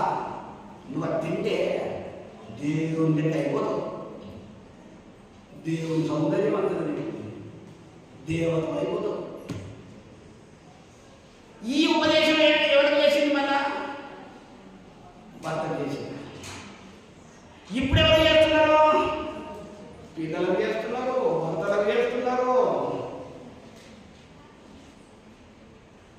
నువ్వు అది తింటే దేవుని లెక్క అయిపోతావు, దేవుని సౌందర్యం అంతది, దేవత అయిపోతావు. ఈ ఉపదేశం ఎవరికి చేసింది? మళ్ళా భర్త చేసింది. ఇప్పుడు ఎవరు చేస్తున్నారు? పిల్లలకు చేస్తున్నారు, భర్తలకు చేస్తున్నారు.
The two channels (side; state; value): both; identical; correlation 1.00